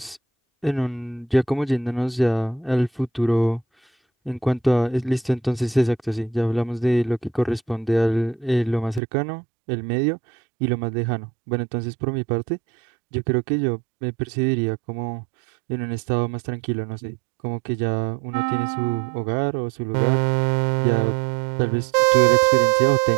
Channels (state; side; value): drops out; left; at 9.0 s